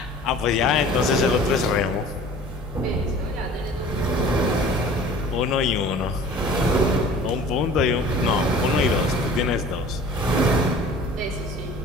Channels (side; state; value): both; normal; correlation 0.45